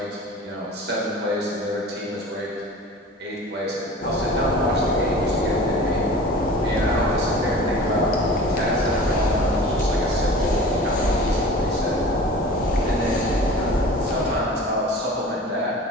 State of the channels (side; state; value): both; normal; correlation 0.40